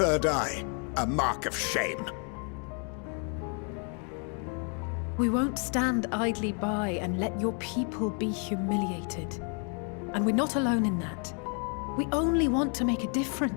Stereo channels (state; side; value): quieter; right; 39.9 dB